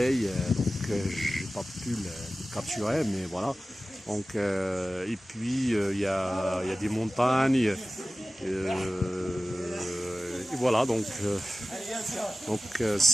donc j'ai pas pu le capturer, mais voilà. Donc et puis il y a des montagnes. Et voilà, donc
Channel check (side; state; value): both; normal; correlation 0.96